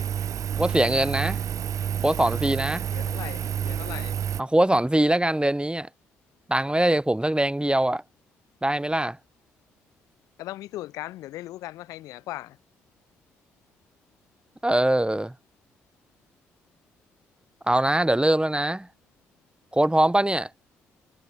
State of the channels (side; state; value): both; normal; correlation 0.91